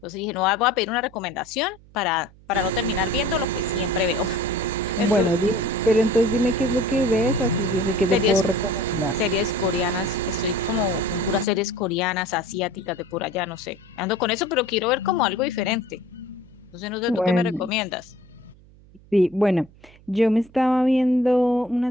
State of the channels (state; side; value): noise; right; hum, 25 dB below the sound